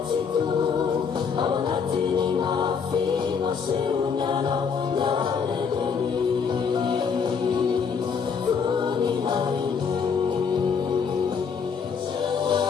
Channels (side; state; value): right; quieter; 6.1 dB